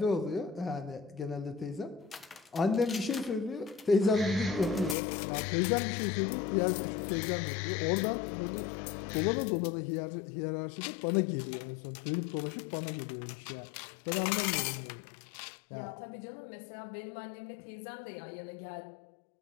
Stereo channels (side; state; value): right; drops out; at 5.0 s